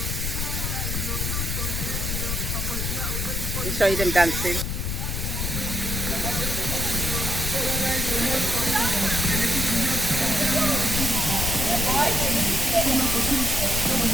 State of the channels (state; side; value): noise; left; rumble, 2 dB below the sound